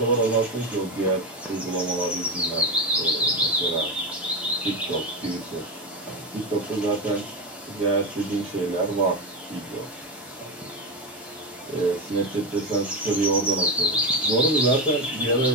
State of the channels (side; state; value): both; normal; correlation 0.14